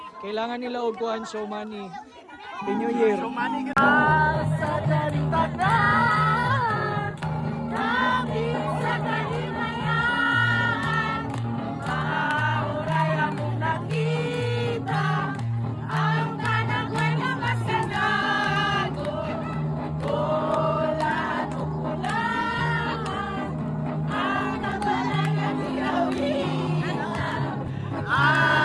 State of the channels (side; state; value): both; identical; correlation 1.00